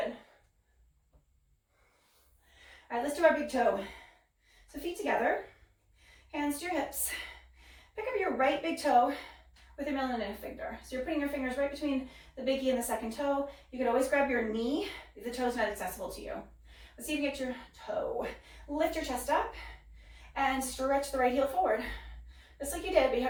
All right, let's do our big toe. So feet together, hands to your hips. Pick up your right big toe with your middle and index finger. So you're putting your fingers right between the biggie and the second toe. You could always grab your knee if the toe's not accessible to you. Let's see if you get your toe. Lift your chest up and stretch the right heel forward. Just like you did, but you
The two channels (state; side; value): identical; both; correlation 1.00